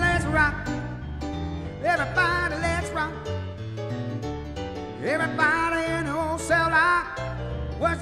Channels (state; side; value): identical; both; correlation 1.00